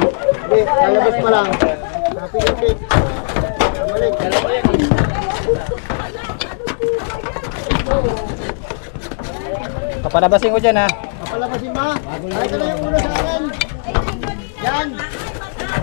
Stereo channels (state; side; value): silent; right; digital silence